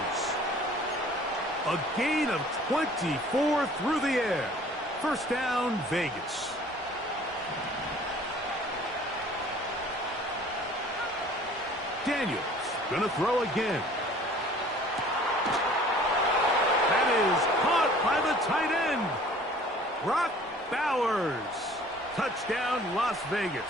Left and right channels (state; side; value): normal; both; correlation 0.51